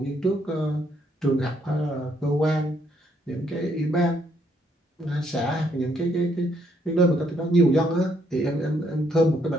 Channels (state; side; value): normal; both; correlation 0.71